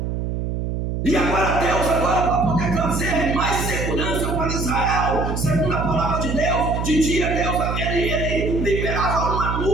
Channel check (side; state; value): right; noise; hum, 2 dB below the sound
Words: E agora Deus, para poder trazer mais segurança para Israel, segundo a palavra de Deus, de dia Deus, ele liberava uma